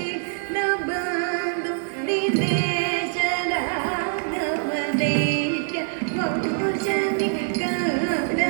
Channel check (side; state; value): left; silent; digital silence